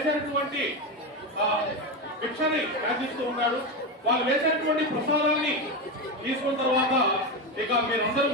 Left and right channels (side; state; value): both; normal; correlation 0.15